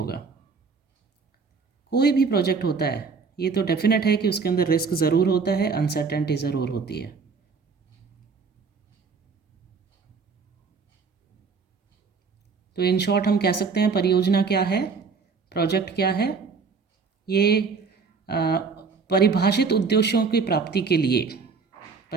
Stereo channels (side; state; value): left; quieter; 5.0 dB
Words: कोई भी प्रोजेक्ट होता है ये तो डेफिनेट है कि उसके अंदर रिस्क ज़रूर होता है, अनसर्टेनिटी ज़रूर होती है। तो इन शॉर्ट हम कह सकते हैं परियोजना क्या है, प्रोजेक्ट क्या है। ये परिभाषित उद्देश्यों की प्राप्ति के लिए,